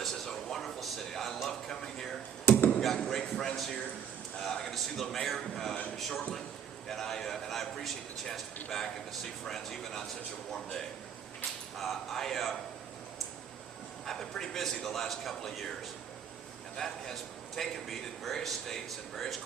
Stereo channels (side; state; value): left; quieter; 8.3 dB